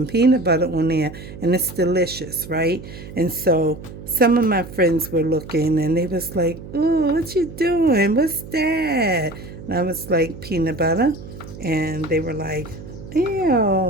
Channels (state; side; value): noise; right; hum, 14 dB below the sound